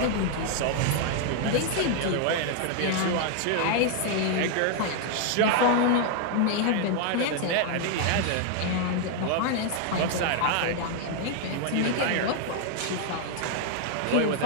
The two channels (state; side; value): different; both; correlation 0.00